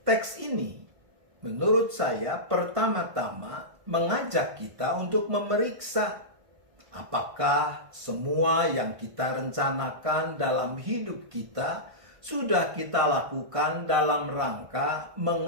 Teks ini menurut saya pertama-tama mengajak kita untuk memeriksa apakah semua yang kita rencanakan dalam hidup kita sudah kita lakukan dalam rangka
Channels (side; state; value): left; late; 1.5 ms